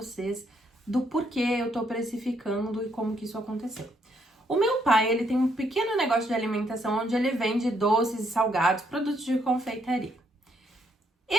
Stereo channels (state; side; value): normal; both; correlation 0.72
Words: do porquê eu tô precificando e como que isso aconteceu. O meu pai, ele tem um pequeno negócio de alimentação onde ele vende doces e salgados, produtos de confeitaria.